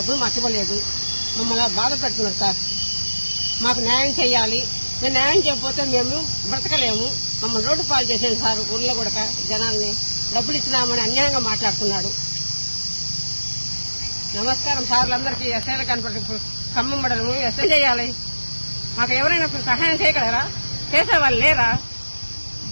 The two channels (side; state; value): both; inverted; correlation -1.00